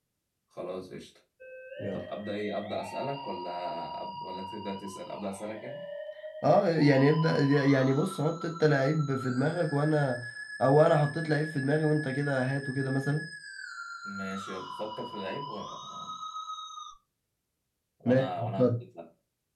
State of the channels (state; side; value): identical; both; correlation 1.00